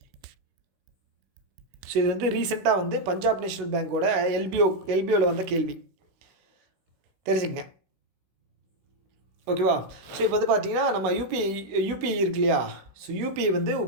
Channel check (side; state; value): left; late; 16 ms